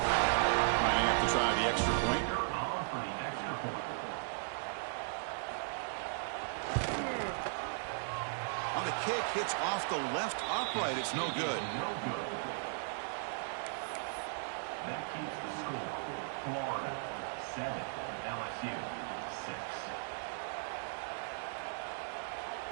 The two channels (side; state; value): left; silent; digital silence